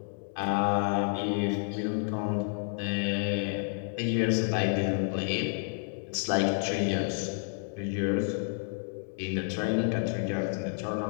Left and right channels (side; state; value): right; silent; 57 dB below the other